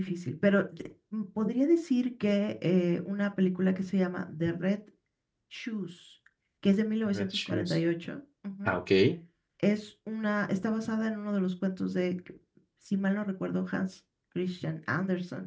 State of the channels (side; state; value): both; identical; correlation 1.00